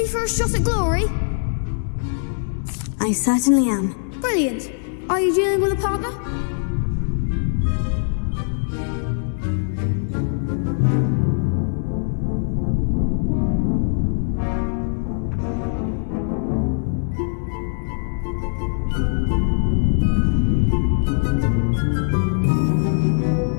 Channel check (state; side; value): silent; right; digital silence